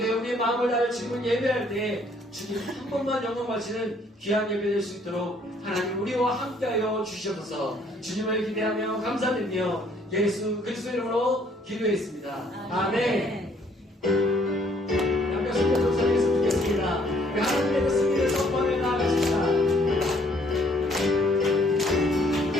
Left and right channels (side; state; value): both; normal; correlation 0.63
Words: 마음을 다해 주님을 예배할 때 주님 한 번만 영광 바치는 귀한 예배 될 수 있도록 하나님 우리와 함께하여 주시옵소서. 주님을 기대하며 감사드리며 예수 그리스도 이름으로 기도했습니다. 아멘. 함께 손을 동사하겠으면 좋겠습니다. 하나님의 그 승리를 선포하며 나아가십시다.